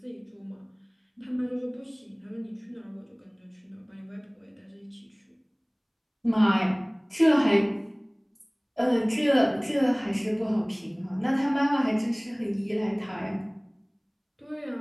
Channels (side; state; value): both; identical; correlation 1.00